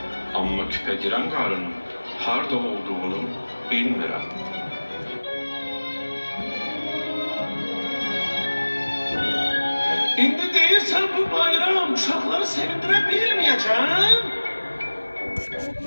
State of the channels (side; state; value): both; inverted; correlation -1.00